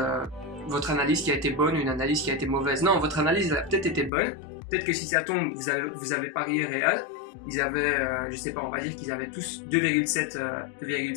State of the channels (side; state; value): right; drops out; at 4.1 s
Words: votre analyse qui a été bonne ou une analyse qui a été mauvaise. Non, votre analyse elle a peut-être été bonne. Peut-être que si ça tombe, vous avez parié Real. Ils avaient, je sais pas, on va dire qu'ils avaient tous